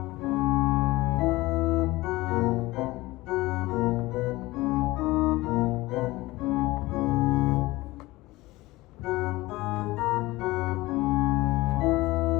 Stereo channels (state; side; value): quieter; right; 19.8 dB